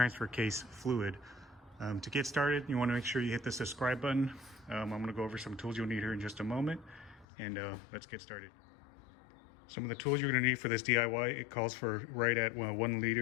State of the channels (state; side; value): drops out; right; at 7.2 s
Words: case fluid. To get started, you want to make sure you hit the subscribe button. I'm going to go over some tools you'll need here in just a moment, and let's get started. Some of the tools you're going to need for this DIY, it calls for right at 1